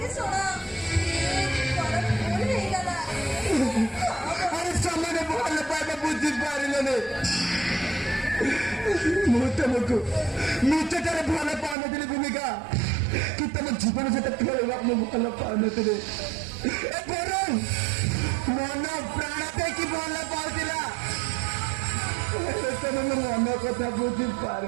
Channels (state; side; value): drops out; left; at 11.8 s